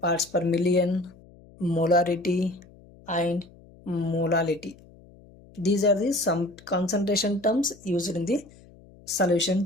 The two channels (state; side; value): noise; left; hum, 24 dB below the sound